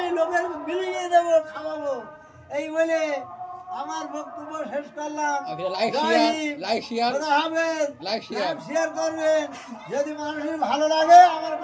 লোকের বিলিয়ে দেবো, খাওয়াবো। এই বলে আমার বক্তব্য শেষ করলাম। শেয়ার করবেন যদি মানুষের ভালো লাগে আমার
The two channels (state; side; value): identical; both; correlation 1.00